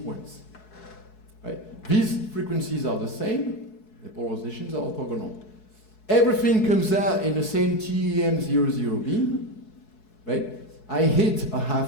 Right? These frequencies are the same, the polarizations are orthogonal. Everything comes out in the same TEM00 beam, right? I hit a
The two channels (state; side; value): late; right; 4.7 ms